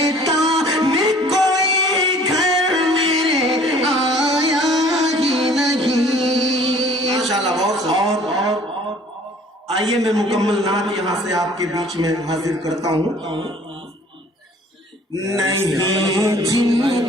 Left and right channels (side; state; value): both; normal; correlation 0.53